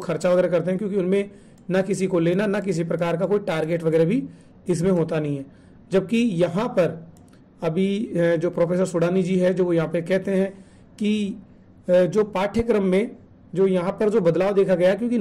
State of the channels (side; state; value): both; identical; correlation 1.00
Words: वगैरह करते हैं, क्योंकि उनमें ना किसी को लेना ना किसी प्रकार का कोई टारगेट वगैरह भी इसमें होता नहीं है। जबकि यहाँ पर अभी जो प्रोफेसर सुडानी जी है जो यहाँ पे कहते हैं कि जो पाठ्यक्रम में जो यहाँ पर जो बदलाव देखा गया, क्योंकि